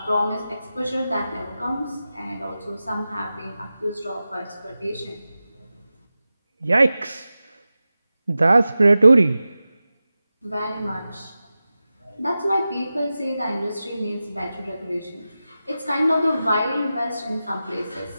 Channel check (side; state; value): both; inverted; correlation -0.94